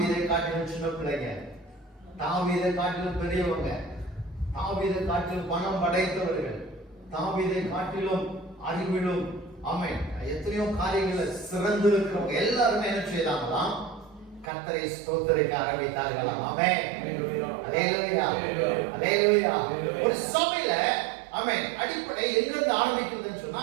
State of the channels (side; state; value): left; drops out; at 14.5 s